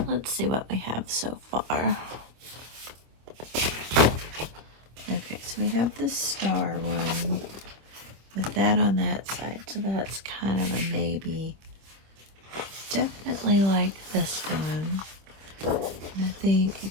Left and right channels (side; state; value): left; late; 26 ms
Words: Let's see what we have so far. Okay, so we have this star one with that on that side, so that's kind of a maybe. definitely like this one. And I think you